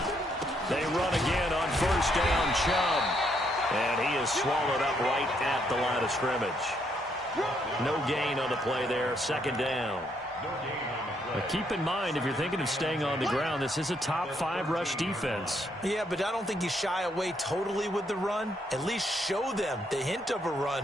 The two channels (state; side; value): normal; both; correlation 0.73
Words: They run again on 1st down, Chubb. And he is swallowed up right at the line of scrimmage. No gain on the play there, 2nd down. But keep in mind, if you're thinking of staying on the ground, this is a top 5 rush defense. Yeah, but I don't think you shy away totally with the run. At least show them the hint of a